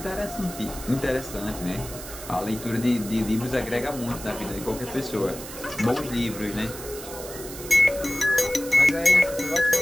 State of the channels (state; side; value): noise; right; hiss, 12 dB below the sound